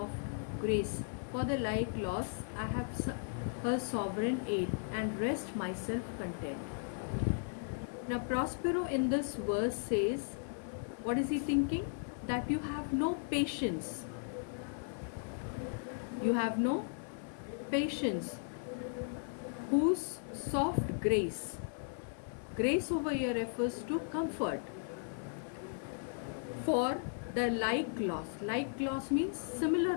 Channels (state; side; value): silent; right; 53 dB below the other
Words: grace for the like loss I have her sovereign aid, and rest myself content. Now, Prospero in this verse says, what is he thinking? That you have no patience. You have no patience. Whose soft grace. Grace over here refers to comfort. For the like loss. Like loss means